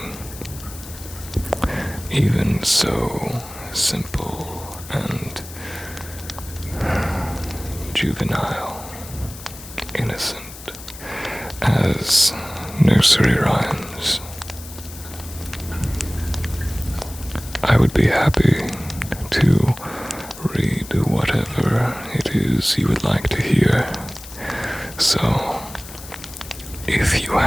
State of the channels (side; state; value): left; noise; hiss, 15 dB below the sound